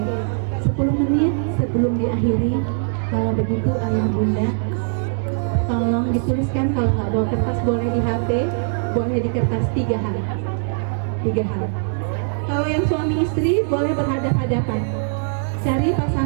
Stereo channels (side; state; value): left; silent; 65 dB below the other